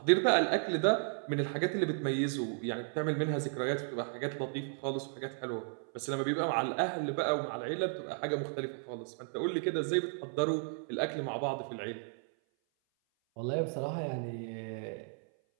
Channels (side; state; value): left; silent; 55 dB below the other